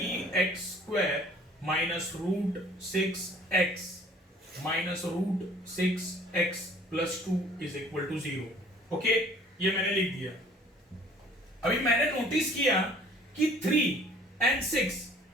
-√6x -√6x + 2 = 0। ओके, ये मैंने लिख दिया। अभी मैंने नोटिस किया कि 3 और 6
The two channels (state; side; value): normal; both; correlation 0.54